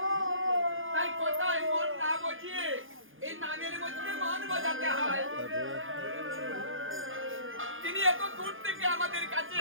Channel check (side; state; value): left; late; 0.58 ms